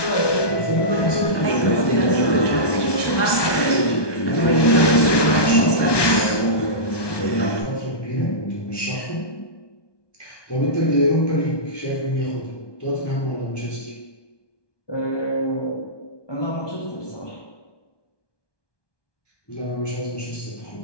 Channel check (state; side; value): late; right; 1.2 ms